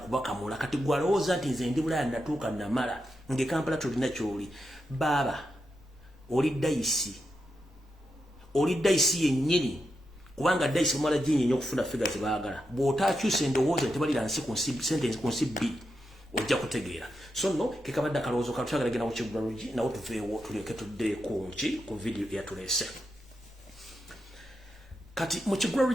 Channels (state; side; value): normal; both; correlation 0.86